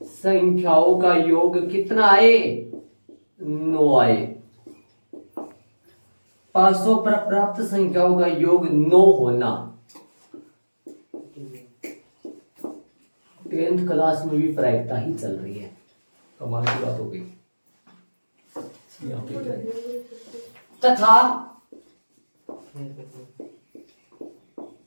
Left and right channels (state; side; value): inverted; both; correlation -1.00